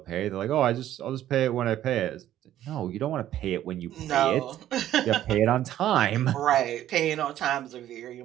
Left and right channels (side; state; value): left; quieter; 12.5 dB